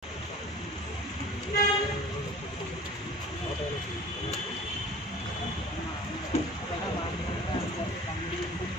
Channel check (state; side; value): normal; both; correlation 0.44